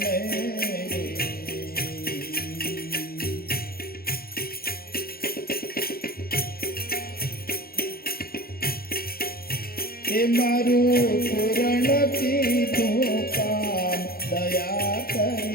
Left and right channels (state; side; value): late; right; 0.44 ms